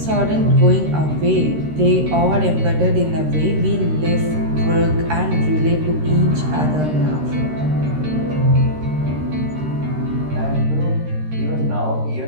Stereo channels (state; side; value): late; left; 13 ms